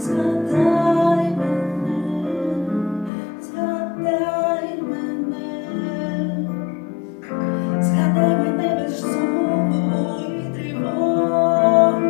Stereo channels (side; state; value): right; drops out; at 3.1 s